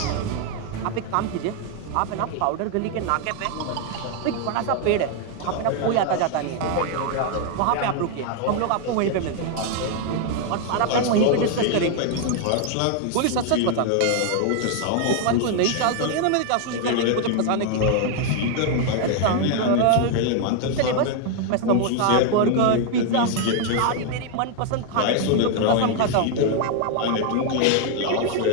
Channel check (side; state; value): both; different; correlation 0.00